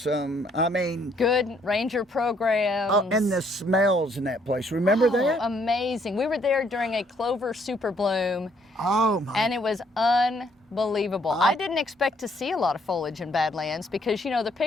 I mean, good ranger programs. Oh, and the smells in that place. Remember that? Amazing. We were there during a clover super bloom. Oh my! And it was unbelievable. I didn't expect to see a lot of foliage in Badlands, because, you know, the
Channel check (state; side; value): normal; both; correlation 0.67